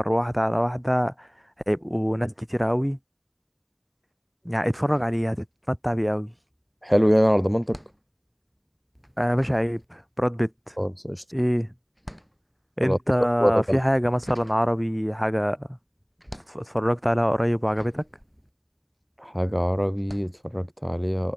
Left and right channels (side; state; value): both; identical; correlation 1.00